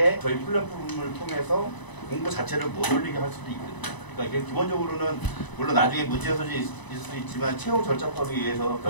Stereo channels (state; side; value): late; right; 1.0 ms